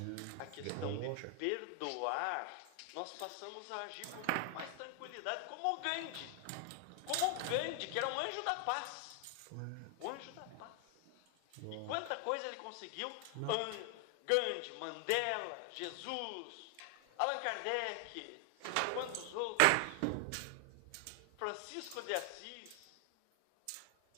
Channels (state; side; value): different; both; correlation 0.00